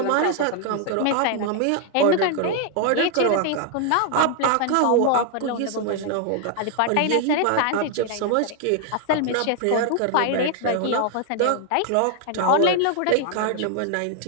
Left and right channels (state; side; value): different; both; correlation 0.00